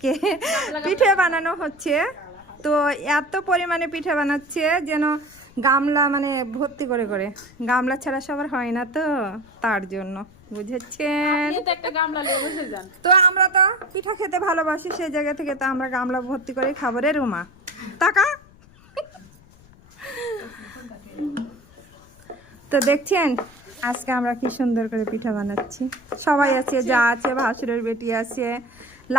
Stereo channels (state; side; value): noise; left; rumble, 25 dB below the sound